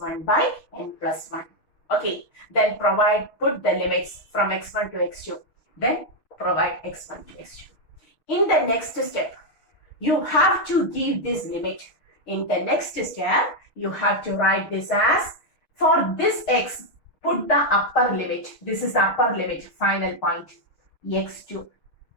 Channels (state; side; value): late; right; 6.4 ms